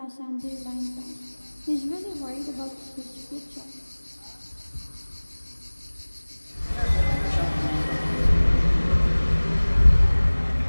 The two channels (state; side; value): inverted; both; correlation -1.00